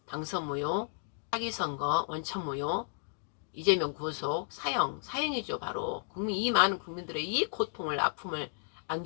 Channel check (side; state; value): right; silent; digital silence